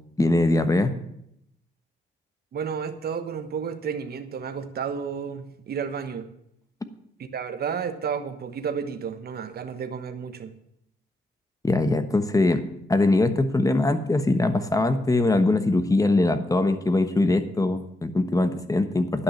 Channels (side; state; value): both; normal; correlation 0.80